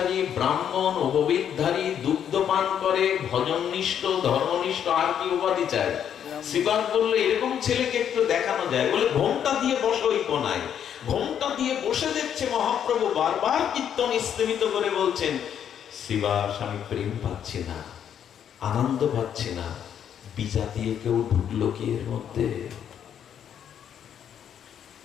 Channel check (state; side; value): quieter; right; 9.0 dB